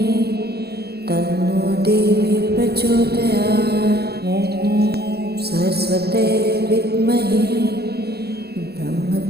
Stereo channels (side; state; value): left; late; 0.47 ms